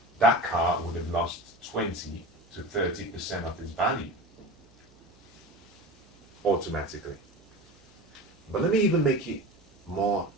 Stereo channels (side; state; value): right; noise; hum, 30 dB below the sound